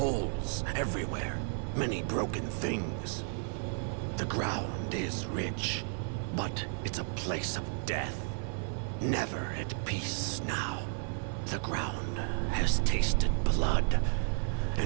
everywhere. Many broken things. The ground is rich, but it's a place of death. Never at peace now. The ground has tasted blood,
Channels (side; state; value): left; silent; 56 dB below the other